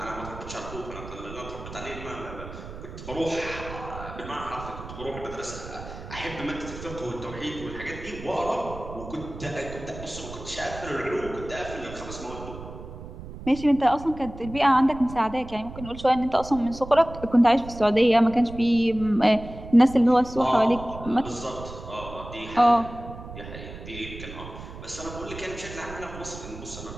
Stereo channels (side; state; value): right; noise; rumble, 12 dB below the sound